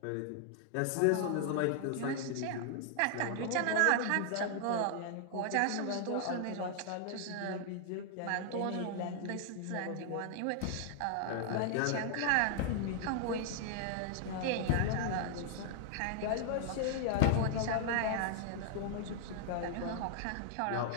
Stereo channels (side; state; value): both; different; correlation 0.00